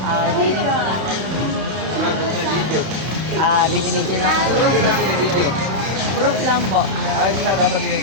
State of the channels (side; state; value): left; late; 31 ms